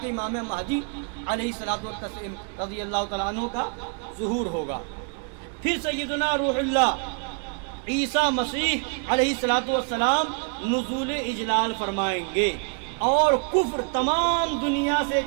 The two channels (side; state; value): left; quieter; 38.6 dB